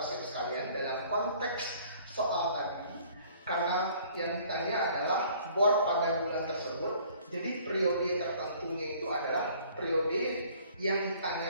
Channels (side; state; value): both; inverted; correlation -0.56